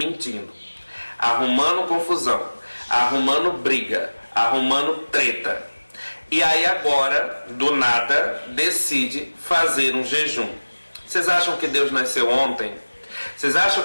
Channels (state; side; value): inverted; both; correlation -1.00